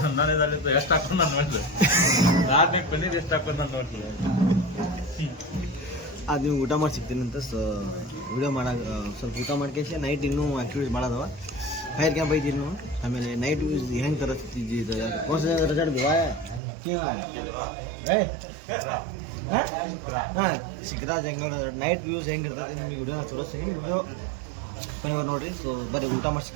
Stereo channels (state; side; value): drops out; left; at 16.6 s